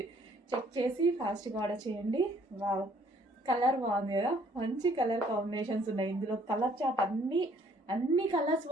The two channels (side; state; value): both; normal; correlation 0.62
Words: చెక్ చేసి ఫాస్ట్గా ఆర్డర్ చేయండి. వావ్, కలర్ బాగుంది కదా, మంచి కలర్ కాంబినేషన్స్ ఉన్నాయి ఇందులో. కలర్ చార్ట్ అన్ని కలర్స్